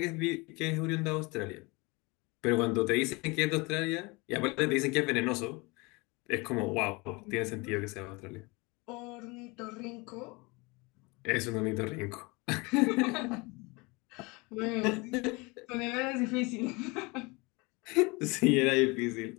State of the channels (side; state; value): right; quieter; 26.2 dB